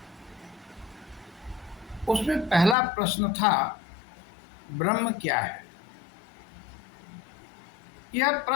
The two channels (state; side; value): drops out; right; at 2.8 s